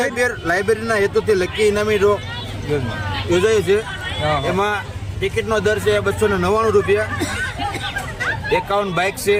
લાઇબ્રેરીના હેતુથી લકી ઇનામી ડ્રો યોજાય છે. એમાં ટિકિટનો દર છે 299 રૂપિયા. 51 બાઇક છે,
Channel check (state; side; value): identical; both; correlation 1.00